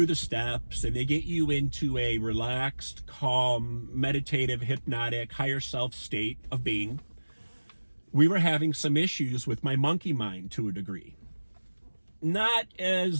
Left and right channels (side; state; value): both; inverted; correlation -1.00